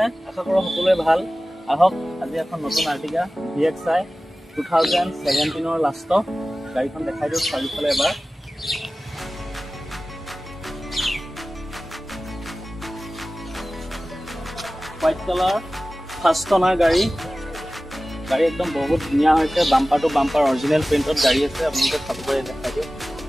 আশা কৰো সকলোৱে ভাল আহক আজি এখন নতুন আৰ্টিকা VXI 2017 ৰ লাষ্ট গাড়ীখন দেখাই দিও চাৰিফালে এবাৰ হোৱাইট কালাৰ ফাৰ্ষ্ট অনাৰ গাড়ী একদম বহুত ধুনীয়া হৈছে বাম্পাৰ টু বাম্পাৰ অৰিজিনেল প্ৰিন্টত গাড়ী আছে আপোনালোকে চাব পাৰে দেখাই দিও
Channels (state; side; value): normal; both; correlation 0.96